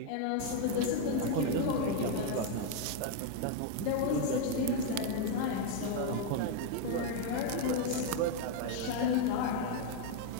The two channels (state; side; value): different; both; correlation 0.01